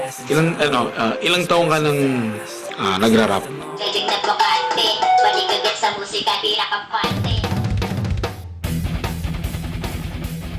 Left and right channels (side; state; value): both; identical; correlation 1.00